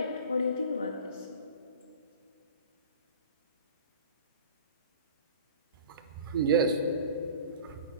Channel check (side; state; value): both; inverted; correlation -0.41